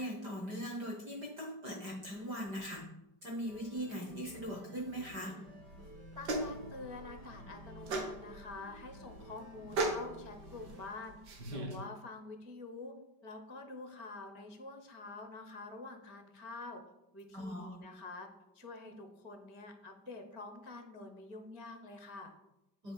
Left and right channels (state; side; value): late; left; 5.1 ms